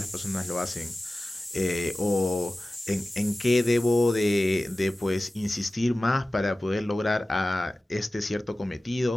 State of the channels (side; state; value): both; normal; correlation 0.96